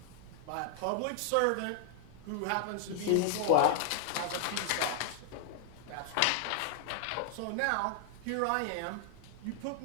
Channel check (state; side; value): different; both; correlation 0.00